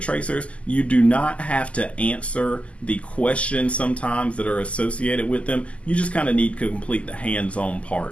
Tracers, you do not have to answer the questions sometimes that are associated with them. You just kind of need to complete the hands-on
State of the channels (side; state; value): right; late; 0.061 ms